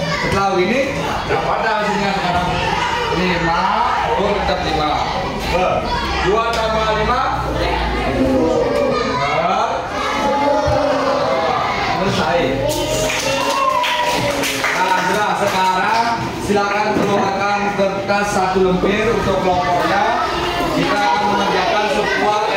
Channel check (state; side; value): identical; both; correlation 1.00